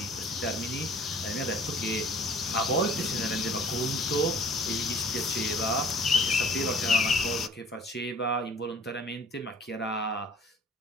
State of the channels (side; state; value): both; normal; correlation 0.52